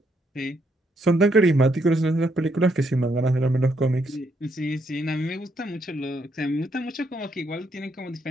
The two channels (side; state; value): both; normal; correlation 0.75